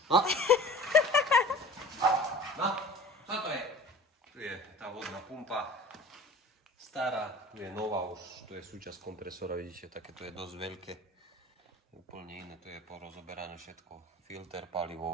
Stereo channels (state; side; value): normal; both; correlation 0.42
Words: No, čo to je? Tu je tá vodná pumpa. Stará, tu je nová už, tu je súčasť kompresora, vidíte, také to je dosť veľké. Úplne iné, tu je porozoberané všetko. Filter